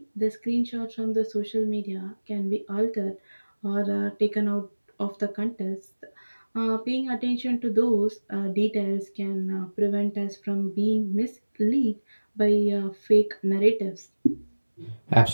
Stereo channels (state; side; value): inverted; both; correlation -1.00